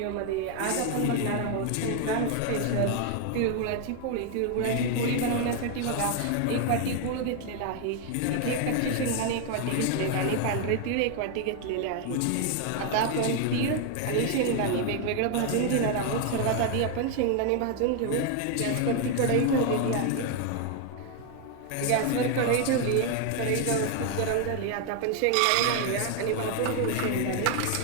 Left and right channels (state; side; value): different; both; correlation 0.01